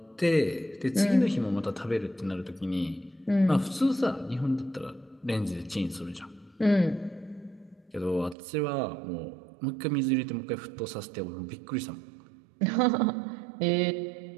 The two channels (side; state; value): left; drops out; at 8.3 s